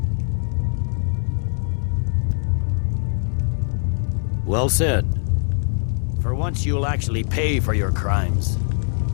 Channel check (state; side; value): silent; right; 64 dB below the other